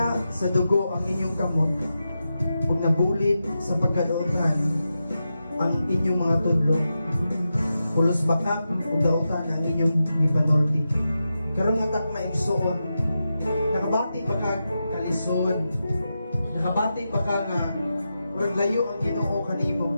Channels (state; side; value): inverted; both; correlation -0.89